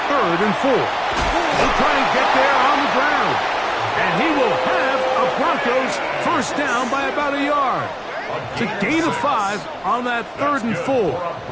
3rd and 4. He'll try and get there on the ground. And he will have a Broncos first down by about a yard. It's a gain of 5 on that 3rd and 4.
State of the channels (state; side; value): identical; both; correlation 1.00